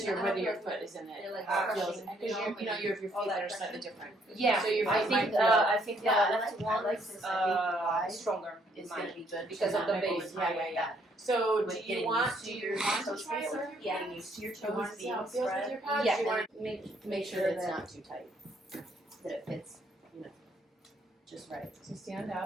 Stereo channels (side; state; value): both; normal; correlation 0.68